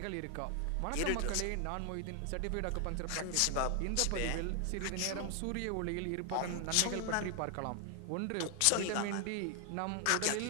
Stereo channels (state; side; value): different; both; correlation 0.00